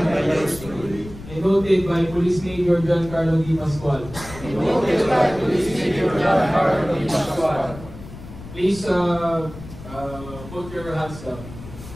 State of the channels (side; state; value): left; noise; rumble, 15 dB below the sound